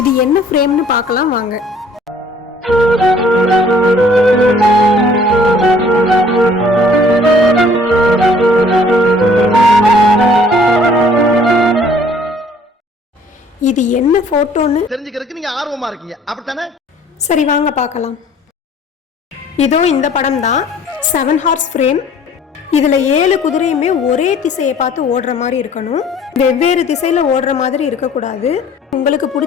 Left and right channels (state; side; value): normal; both; correlation 0.55